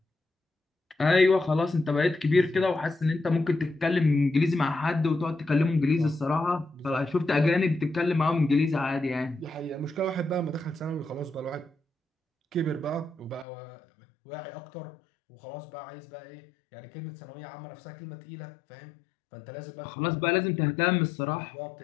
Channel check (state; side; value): drops out; right; at 13.5 s